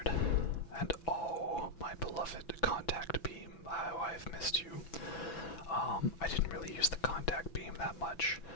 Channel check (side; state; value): right; late; 6.0 ms